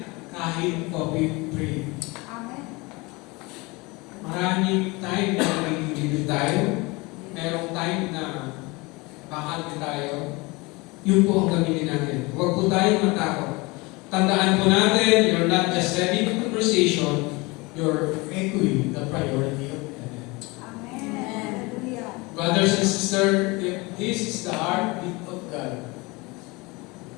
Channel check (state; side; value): quieter; right; 25.0 dB